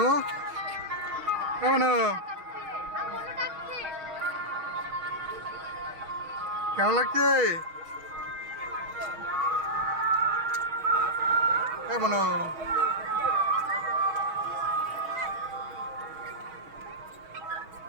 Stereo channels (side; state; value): left; late; 6.3 ms